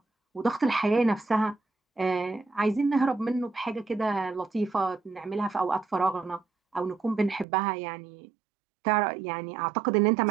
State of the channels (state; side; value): drops out; left; at 7.5 s